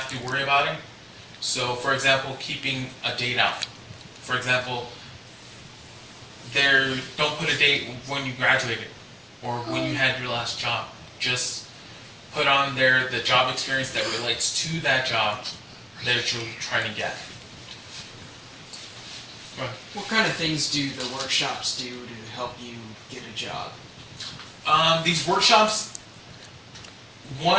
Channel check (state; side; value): identical; both; correlation 1.00